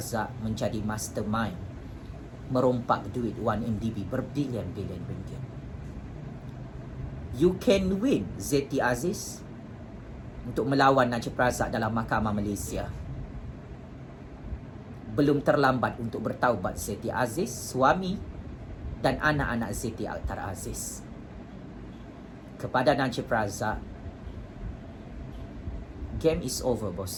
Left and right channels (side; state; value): both; identical; correlation 1.00